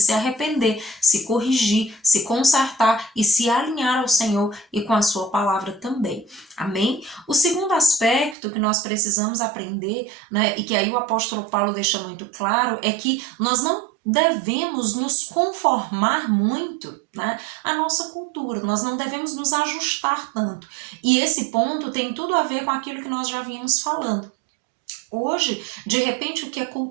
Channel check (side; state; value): left; drops out; at 8.3 s